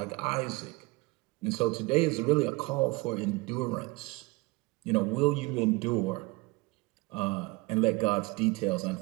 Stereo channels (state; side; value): quieter; left; 24.1 dB